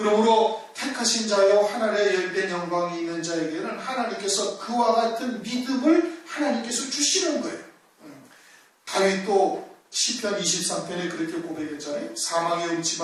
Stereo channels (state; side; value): identical; both; correlation 1.00